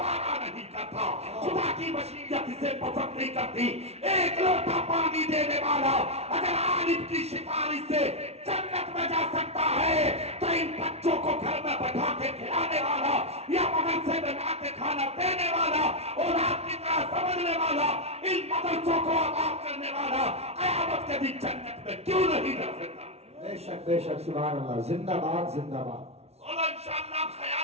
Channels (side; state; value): left; late; 0.31 ms